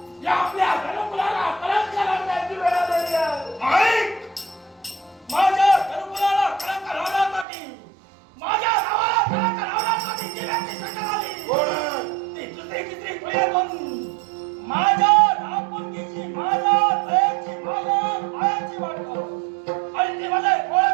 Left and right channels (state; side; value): drops out; left; at 7.5 s